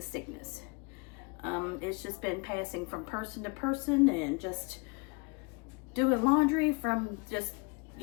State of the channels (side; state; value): right; quieter; 29.9 dB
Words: sickness. It's just been passing from person to person and just doing laundry from just,